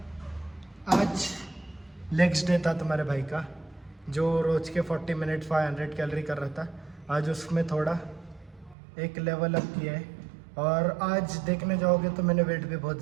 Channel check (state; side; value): drops out; left; at 8.8 s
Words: आज लेग्स डे था तुम्हारे भाई का, जो रोज़ के 40 मिनट 500 कैलोरी कर रहा था। आज उसमें थोड़ा एक लेवल अप किया है, और आज देखने जाओगे तो मैंने वेट भी बहुत